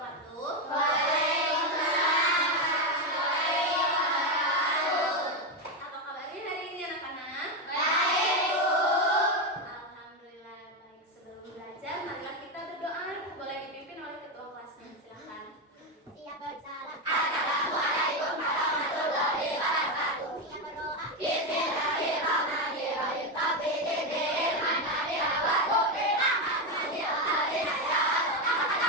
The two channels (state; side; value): normal; both; correlation 0.10